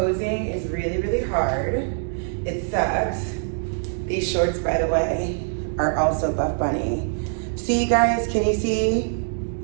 is really, really hard. It sucks. These shorts, by the way, are also Buff Bunny. See, guys, can you see?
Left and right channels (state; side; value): silent; left; 61 dB below the other